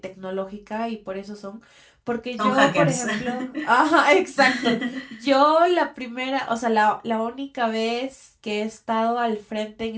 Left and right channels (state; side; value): identical; both; correlation 1.00